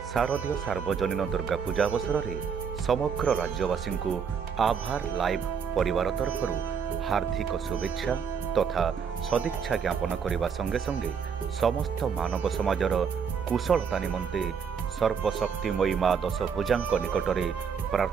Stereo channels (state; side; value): quieter; left; 6.7 dB